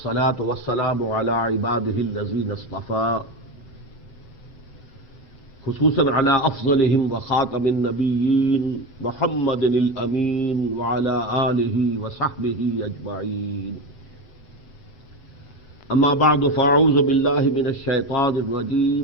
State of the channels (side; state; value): right; late; 8.0 ms